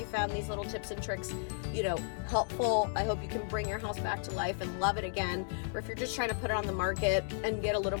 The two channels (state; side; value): silent; right; digital silence